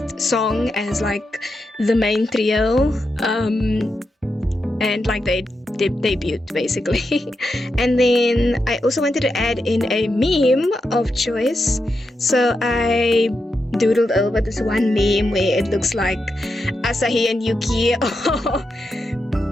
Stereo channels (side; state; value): both; normal; correlation 0.86